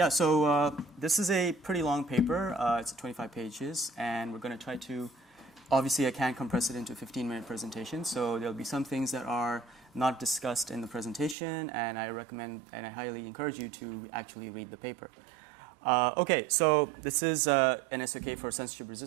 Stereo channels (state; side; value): drops out; left; at 11.4 s